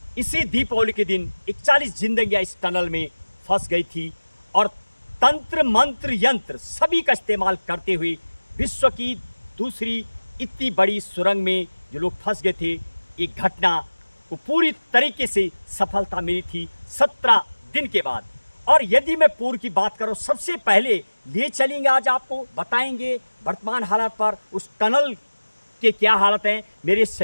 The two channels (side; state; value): both; inverted; correlation -1.00